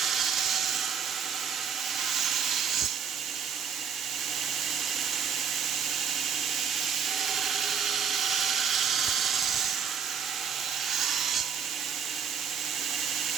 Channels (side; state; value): left; quieter; 7.1 dB